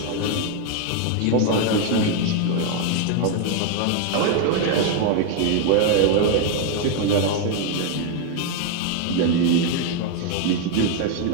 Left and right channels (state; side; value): different; both; correlation 0.01